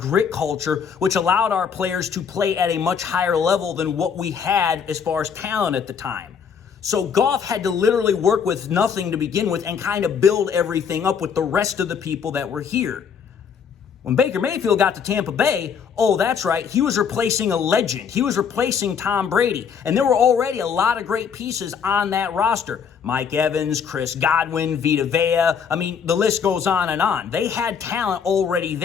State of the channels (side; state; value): right; quieter; 6.8 dB